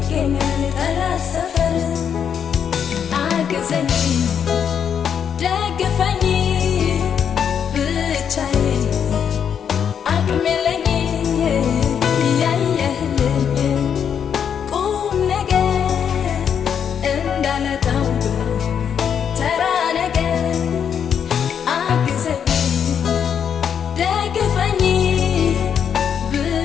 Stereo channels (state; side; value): quieter; right; 7.9 dB